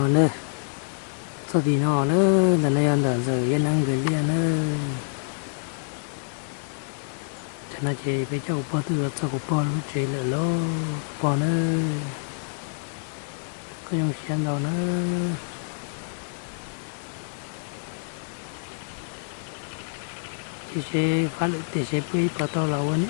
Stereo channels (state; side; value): silent; right; 60 dB below the other